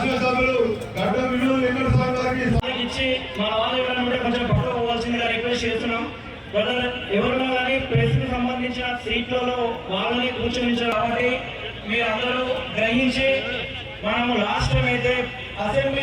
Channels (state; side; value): identical; both; correlation 1.00